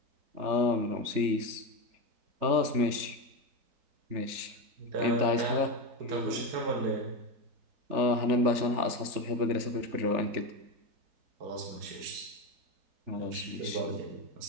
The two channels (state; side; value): late; left; 3.4 ms